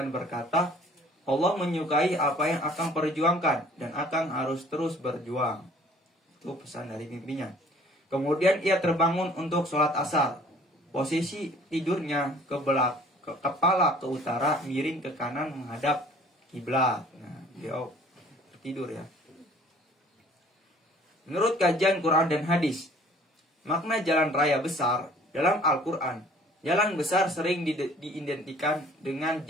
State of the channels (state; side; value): normal; both; correlation 0.53